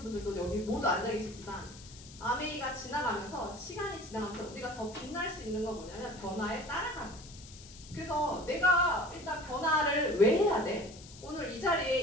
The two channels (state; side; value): noise; left; hiss, 18 dB below the sound